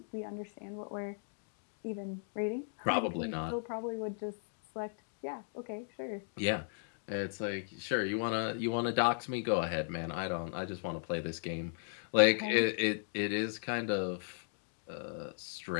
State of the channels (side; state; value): right; silent; digital silence